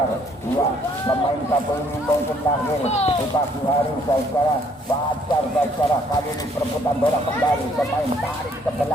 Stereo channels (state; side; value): normal; both; correlation 0.64